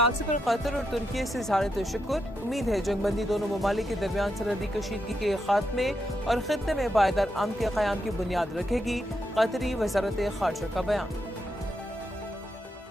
पर कतर और तुर्की से इज़हार तशक्कुर। उम्मीद है जंगबंदी दोनों ममालिक के दरमियान सरहदी कशीदगी के खात्मे और खित्ते में पायदार अमन के क़याम की बुनियाद रखेगी। कतरी वज़ारत ख़ारजा का बयान।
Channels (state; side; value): normal; both; correlation 0.83